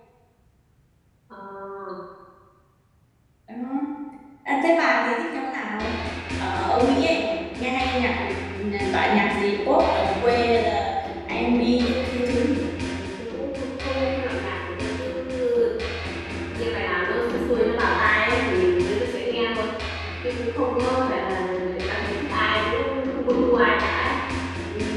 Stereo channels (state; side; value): identical; both; correlation 1.00